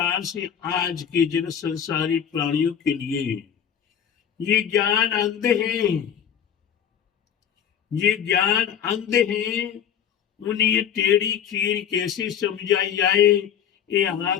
से आज के जन संसारी प्राणियों के लिए ये ज्ञान अंध है, ये ज्ञान अंध है। उन्हें ये टेढ़ी खीर कैसे समझाई जाए, ये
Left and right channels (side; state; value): right; quieter; 8.7 dB